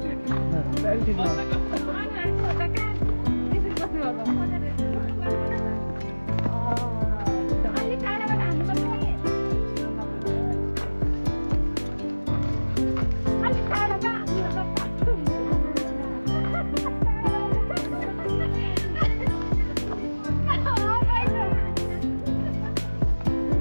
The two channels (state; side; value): inverted; both; correlation -1.00